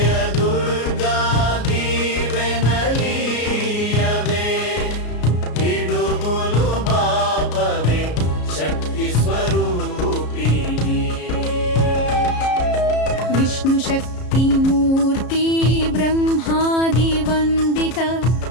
దుర్గా దీవెనలీయవే, పిడుగులు బాపవే శక్తి స్వరూపిణి. విష్ణు శక్తి మూర్తి బ్రహ్మాది వందిత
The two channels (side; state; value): right; late; 33 ms